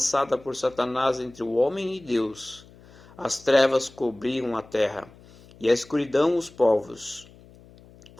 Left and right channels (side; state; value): left; noise; hum, 24 dB below the sound